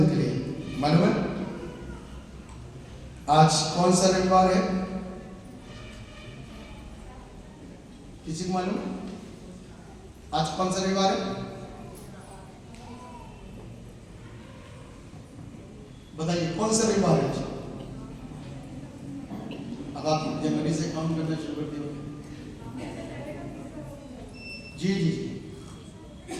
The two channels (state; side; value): identical; both; correlation 1.00